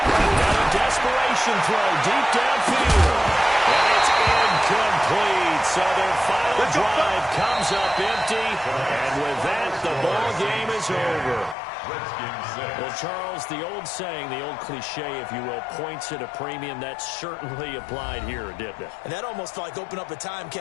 Got a desperation throw deep downfield. And it's incomplete. So their final drive comes up empty. And with that, the ball game is over. Well, Charles, the old saying, the old cliche, if you will, points at a premium, that certainly applied here, didn't it? And that almost felt like opened up a time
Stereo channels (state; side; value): drops out; right; at 11.6 s